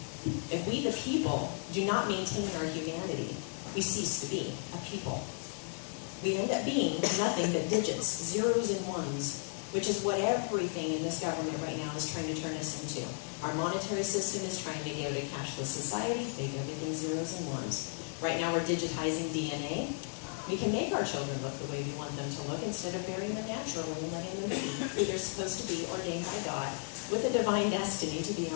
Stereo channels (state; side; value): silent; right; 55 dB below the other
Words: If we the people do not maintain our humanity, we cease to be a people. We end up being nothing but digits, zeros and ones, which is what everything in this government right now is trying to turn us into. Our monetary system is trying to go to a cashless society, make everything zeros and ones. Right now we're digitizing DNA. We can make our children look the way we want them to look instead of burying them naturally and letting them be who they're supposed to be, ordained by God, with a divine destiny to be